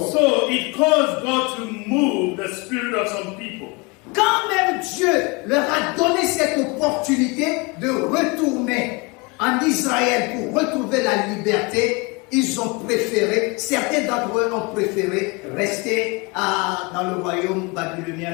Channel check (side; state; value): right; quieter; 27.6 dB